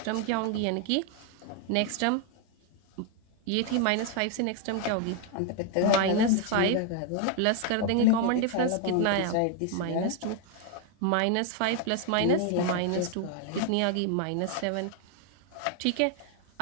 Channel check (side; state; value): both; different; correlation 0.01